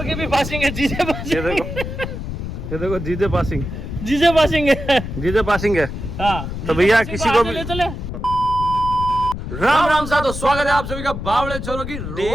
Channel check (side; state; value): left; noise; rumble, 6 dB below the sound